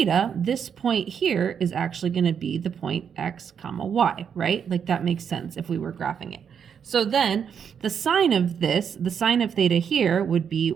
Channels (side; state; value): left; quieter; 7.5 dB